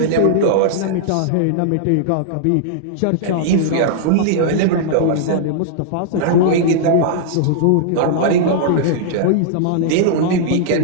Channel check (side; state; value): both; different; correlation -0.02